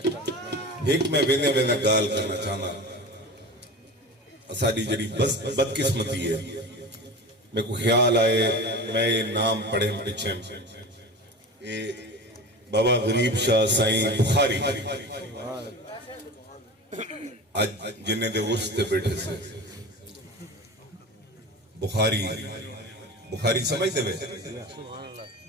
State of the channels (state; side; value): normal; both; correlation 0.32